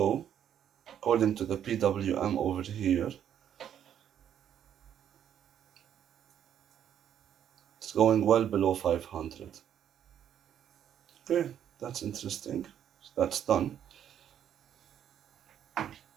according to the PWM over here, it's going well below 500. Okay, that's interesting. So that's done.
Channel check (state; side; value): quieter; left; 9.6 dB